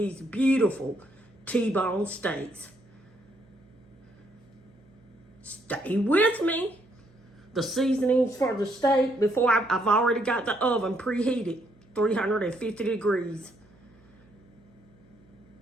beautiful T-bone steaks. Stay with me. The seasonings for the steak, before I've already got the oven preheated, 350 degrees.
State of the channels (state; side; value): noise; right; hum, 29 dB below the sound